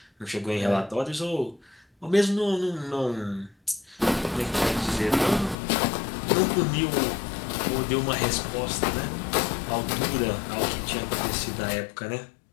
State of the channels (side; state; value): right; drops out; at 5.6 s